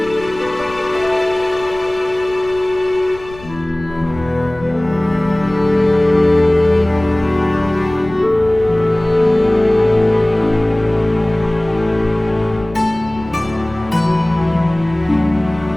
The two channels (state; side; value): noise; left; rumble, 19 dB below the sound